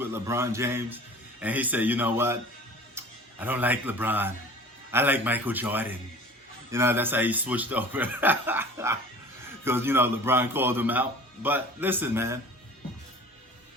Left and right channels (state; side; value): normal; both; correlation 0.43